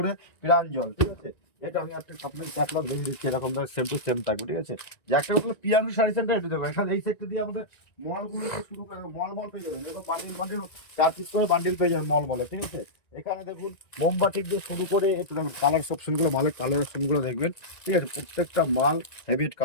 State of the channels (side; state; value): right; late; 1.9 ms